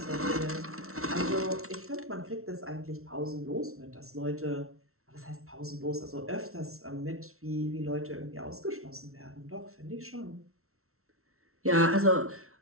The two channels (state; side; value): late; left; 0.63 ms